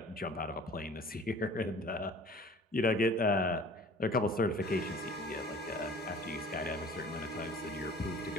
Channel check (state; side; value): normal; both; correlation 0.47